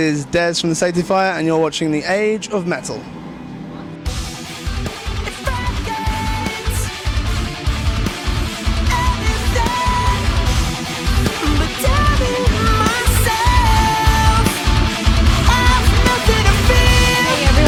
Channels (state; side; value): identical; both; correlation 1.00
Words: Dez from the Safety Fire, and you're watching The Age of Metal.